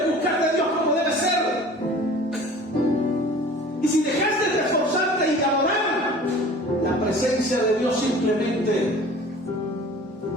buscar de Dios como debe ser. Y si dejaste de esforzarte y de adorar, la presencia de Dios simplemente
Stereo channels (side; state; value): both; normal; correlation 0.44